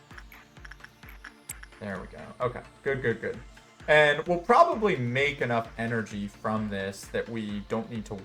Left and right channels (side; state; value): both; identical; correlation 1.00